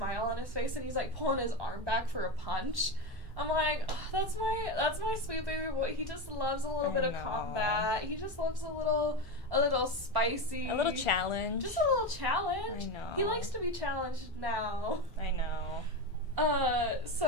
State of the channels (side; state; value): both; normal; correlation 0.16